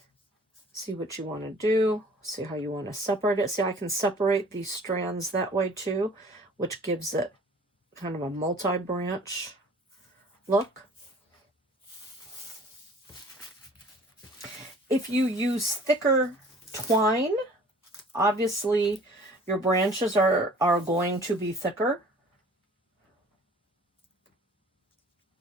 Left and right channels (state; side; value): normal; both; correlation 0.50